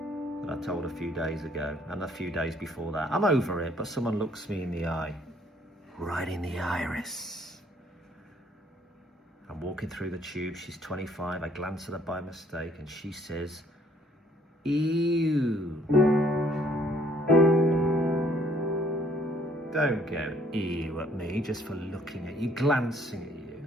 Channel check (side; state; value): both; normal; correlation 0.62